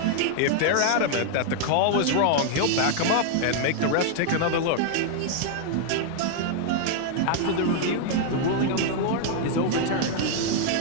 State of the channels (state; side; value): different; both; correlation 0.00